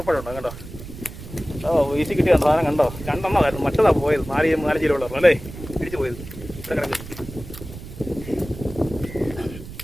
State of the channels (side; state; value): right; noise; rumble, 13 dB below the sound